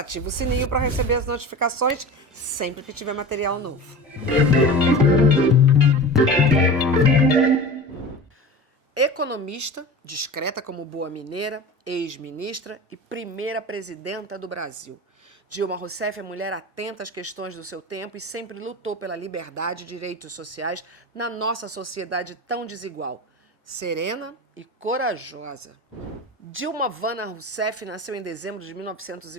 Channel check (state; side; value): normal; both; correlation 0.32